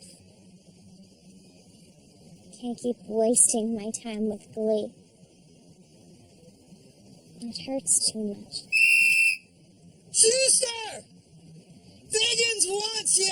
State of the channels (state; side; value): identical; both; correlation 1.00